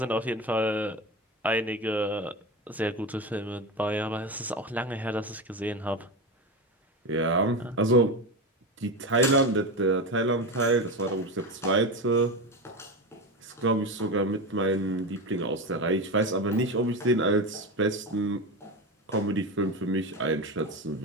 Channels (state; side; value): normal; both; correlation 0.20